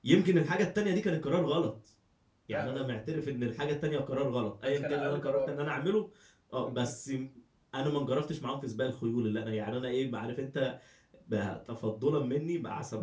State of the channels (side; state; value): both; identical; correlation 1.00